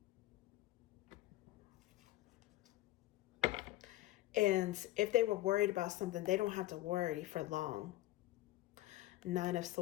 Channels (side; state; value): right; quieter; 16.4 dB